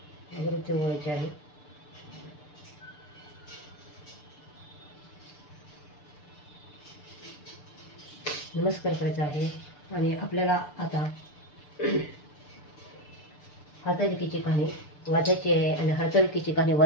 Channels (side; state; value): right; late; 6.8 ms